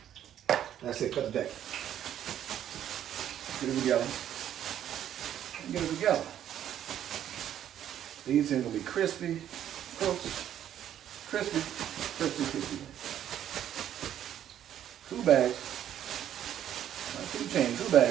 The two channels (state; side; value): quieter; left; 10.7 dB